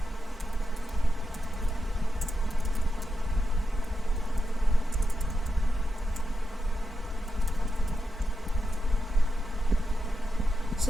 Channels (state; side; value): normal; both; correlation 0.87